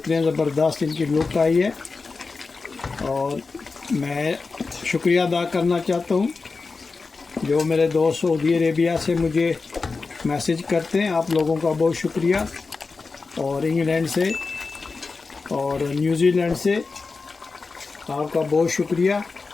ज़बरदस्त इनकी लुक आई है। और मैं शुक्रिया अदा करना चाहता हूँ जो मेरे दोस्त सऊदी अरेबिया से मुझे मैसेज करते हैं, आप लोगों का बहुत शुक्रिया। और इंग्लैंड से और न्यूजीलैंड से आपका बहुत शुक्रिया।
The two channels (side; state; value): right; quieter; 4.2 dB